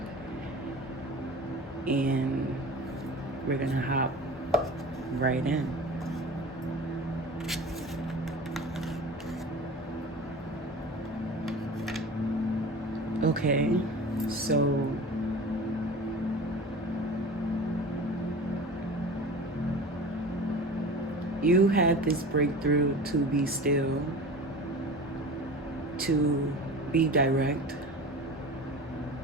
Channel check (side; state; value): both; normal; correlation 0.36